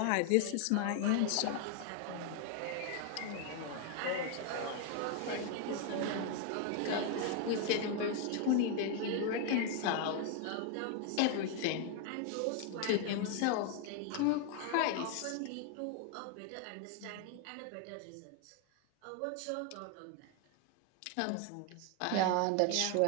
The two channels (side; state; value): both; different; correlation 0.00